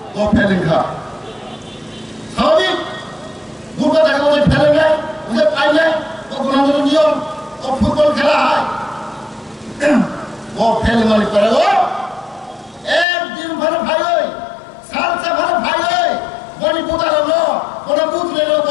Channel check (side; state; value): right; drops out; at 13.1 s